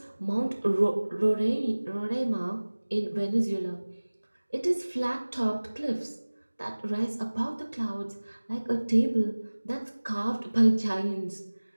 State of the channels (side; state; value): both; inverted; correlation -1.00